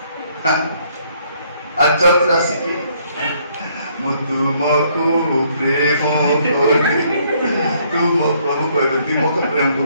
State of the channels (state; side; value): inverted; both; correlation -0.66